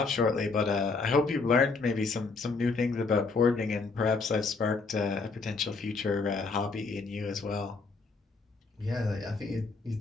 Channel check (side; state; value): right; quieter; 4.1 dB